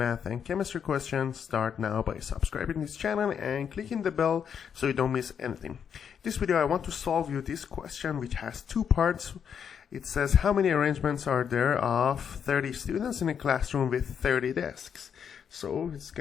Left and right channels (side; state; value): right; quieter; 7.7 dB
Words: and chemistry questions, start now by subscribing this channel and clicking the bell so you don't miss anything. This video I want to solve you this question which has two parts. It says how many arrangements are there of 30 students in a classroom with 30 desks. So it's